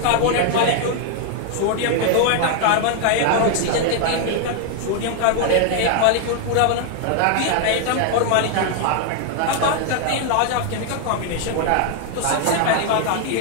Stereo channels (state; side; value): different; both; correlation 0.00